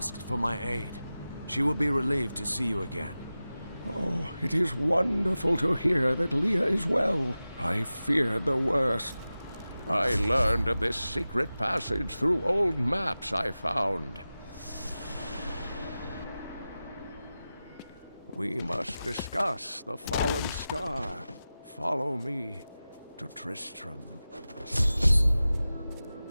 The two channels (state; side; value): inverted; both; correlation -0.95